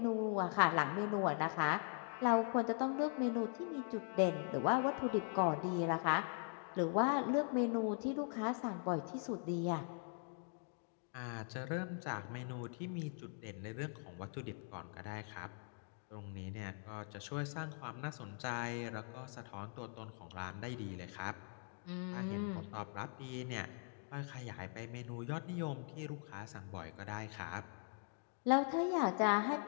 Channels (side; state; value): right; silent; 50 dB below the other